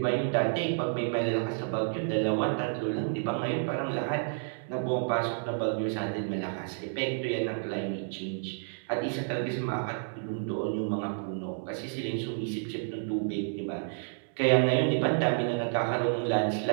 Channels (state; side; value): silent; left; digital silence